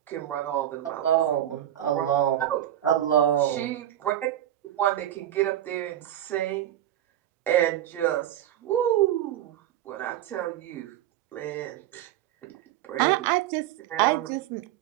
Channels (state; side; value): quieter; left; 12.1 dB